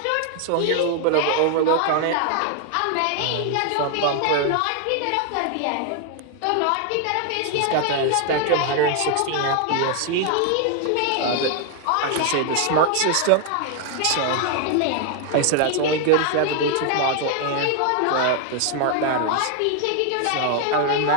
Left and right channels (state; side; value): different; both; correlation 0.00